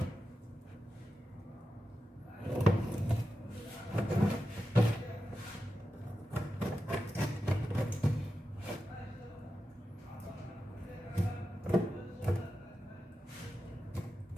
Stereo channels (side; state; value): both; normal; correlation 0.91